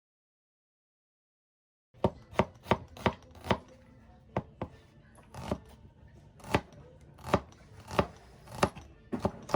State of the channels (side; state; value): both; identical; correlation 1.00